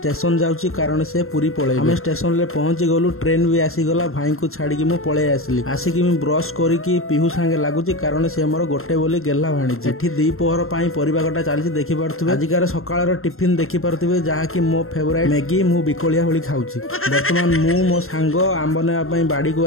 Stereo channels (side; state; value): right; late; 0.62 ms